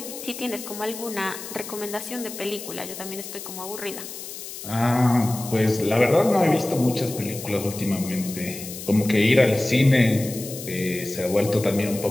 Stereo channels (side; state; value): left; noise; hiss, 11 dB below the sound